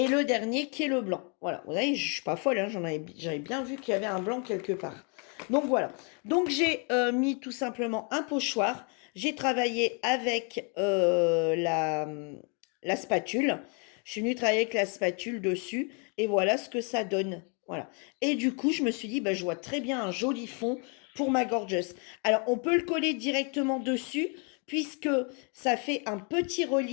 le dernier qui est le blanc. Voilà, vous voyez, je ne suis pas folle, hein, j'avais bien vu qu'il y avait un blanc quelque part. Donc voilà. Donc j'ai mis tout simplement un pochoir. J'ai travaillé avec la spatule. Je suis venue travailler avec la spatule dessus. Et voilà ce que ça donne. Voilà. Et du coup, je me suis dit, bah, je vois très bien un joli fond pour ma gorgeous. Alors, on peut le coller directement dessus puisque ça fait un petit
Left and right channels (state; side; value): quieter; right; 36.7 dB